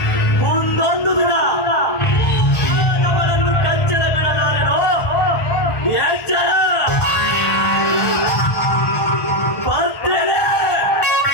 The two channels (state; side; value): late; right; 1.4 ms